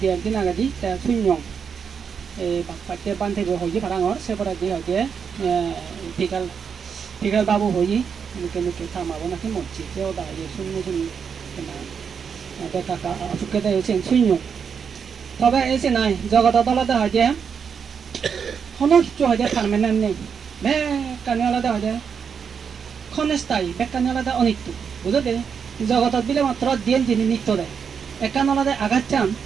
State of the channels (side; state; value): left; quieter; 6.7 dB